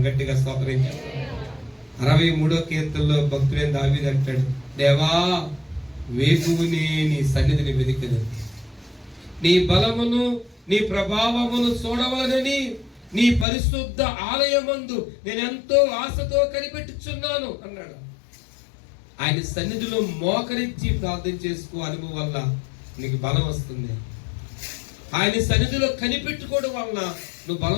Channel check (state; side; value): drops out; right; at 13.5 s